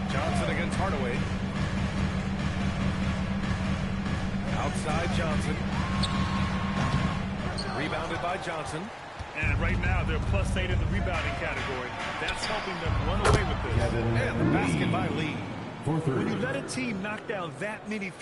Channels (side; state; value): both; identical; correlation 1.00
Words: Johnson against Hardaway. Outside Johnson. Rebounded by Johnson. And right now, they're +8 in the rebounding category. That's helping them run away with this. And the basket by Lee. When you let a team knock down that many